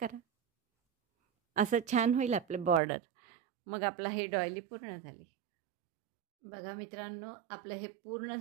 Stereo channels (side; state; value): left; drops out; at 2.8 s